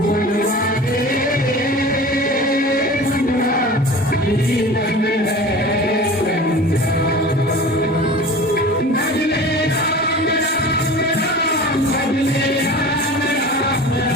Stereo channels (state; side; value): normal; both; correlation 0.38